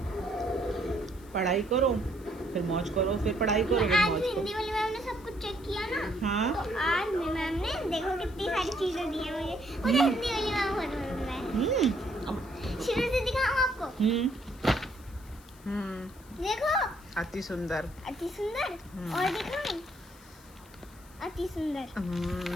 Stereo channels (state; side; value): noise; left; hiss, 25 dB below the sound